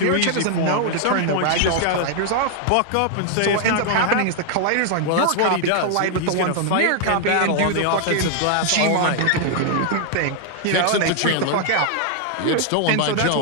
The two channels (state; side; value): different; both; correlation 0.00